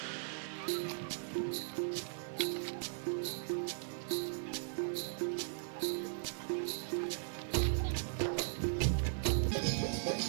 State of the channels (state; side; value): silent; left; 52 dB below the other